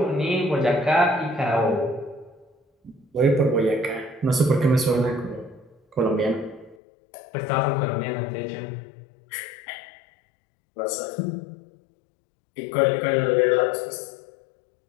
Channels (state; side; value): drops out; right; at 6.8 s